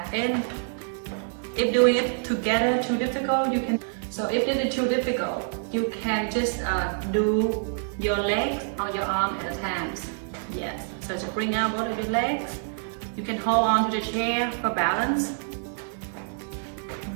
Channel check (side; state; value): left; silent; digital silence